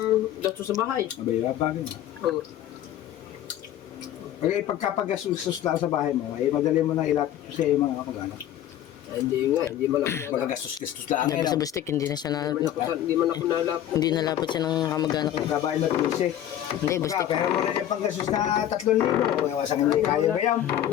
gasto sa bahay. Abay, bagay na. Okay, pagkapagastos lang sa bahay mo, ay madali mo na ilapit sa iyo mga kamag-anak. Hindi nga, hindi man ako Magagastos-gastos lang. Yan pa sa busdek, hindi na siya na... Hindi man ako nalap. Hindi nalapot siya ng kamag-anak. Kabahay na 12. Hindi, busdek. Pero mo na yung panggastos na 3,000. Iwasan hindi kaya ba yan?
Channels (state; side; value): quieter; right; 11.6 dB